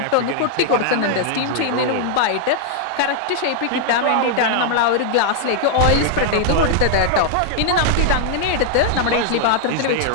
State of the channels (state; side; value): different; both; correlation 0.00